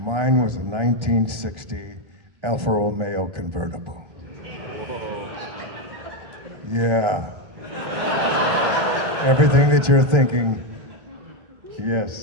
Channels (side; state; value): left; late; 1.4 ms